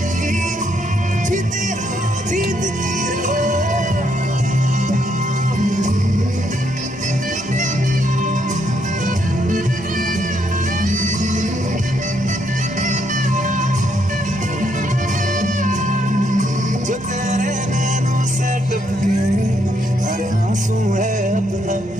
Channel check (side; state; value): right; noise; hum, 26 dB below the sound